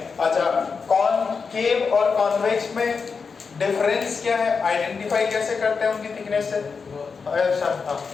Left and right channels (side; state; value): right; quieter; 5.3 dB